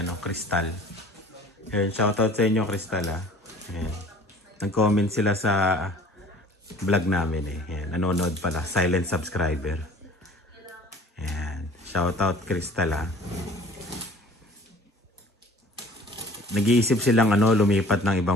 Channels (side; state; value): both; normal; correlation 0.48